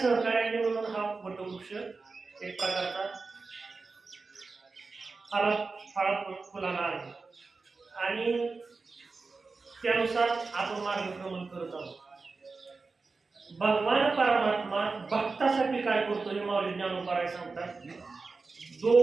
सहकार्यांनी मिळून हा वटवृक्ष एक प्रकारचा फुलांना आहे आणि त्यानुसार आपण मार्गक्रमण करत आहोत. भगवान परमात्मा भक्तासाठी काय करतो हे माऊली ज्ञानोबा सांगतात.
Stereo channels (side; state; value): left; quieter; 4.1 dB